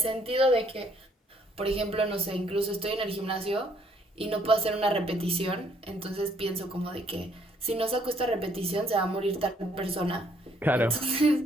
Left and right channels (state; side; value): normal; both; correlation 0.66